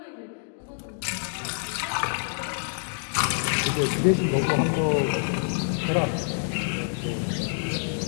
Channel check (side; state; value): right; silent; digital silence